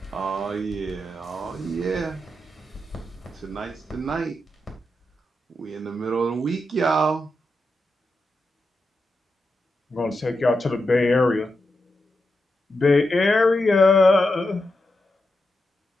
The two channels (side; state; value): both; normal; correlation 0.86